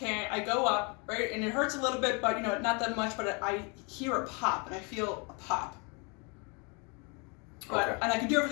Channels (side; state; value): right; quieter; 32.6 dB